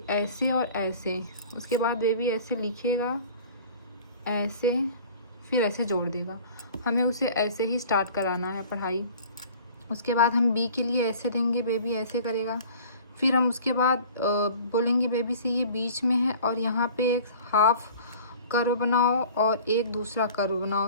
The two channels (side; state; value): both; inverted; correlation -0.46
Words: ऐसे और ऐसे। उसके बाद बेबी ऐसे लिखेगा, ऐसे, फिर ऐसे जोड़ देगा। हमें उसे ऐसे ही स्टार्ट कराना है पढ़ाई। उसके बाद हम B के लिए ऐसे देंगे, बेबी ऐसे करेगा। फिर हम उसके बाद बोलेंगे बेबी से ये बीच में है और यहाँ पे एक हाफ कर्व बनाओ और एक दूसरा कर्व